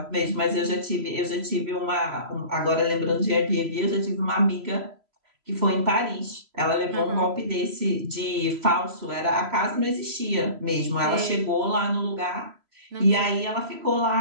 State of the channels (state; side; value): late; left; 3.0 ms